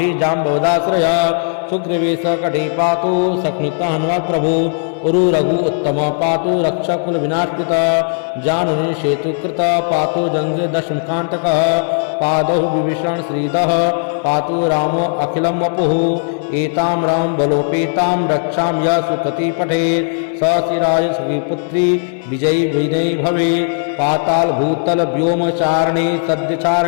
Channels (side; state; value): right; silent; digital silence